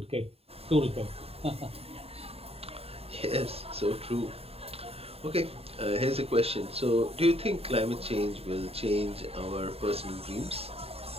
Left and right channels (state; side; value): late; left; 0.29 ms